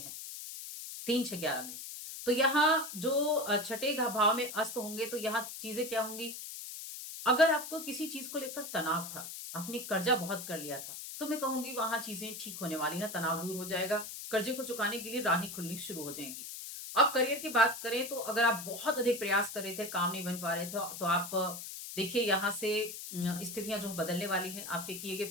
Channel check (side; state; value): left; noise; hiss, 9 dB below the sound